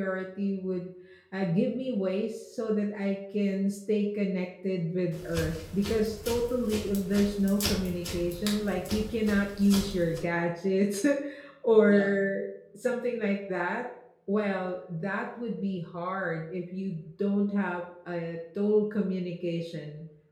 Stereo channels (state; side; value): identical; both; correlation 1.00